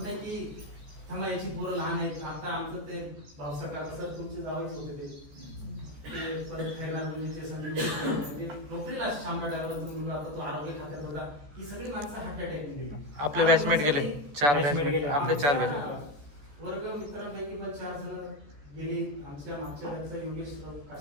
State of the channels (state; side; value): late; left; 14 ms